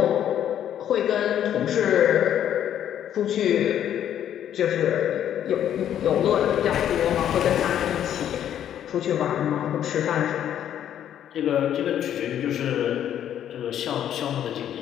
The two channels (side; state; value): right; quieter; 10.3 dB